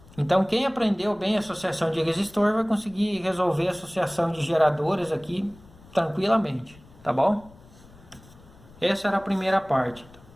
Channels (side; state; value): left; noise; rumble, 24 dB below the sound